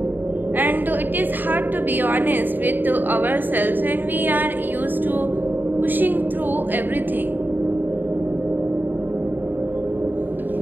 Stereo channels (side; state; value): left; late; 0.091 ms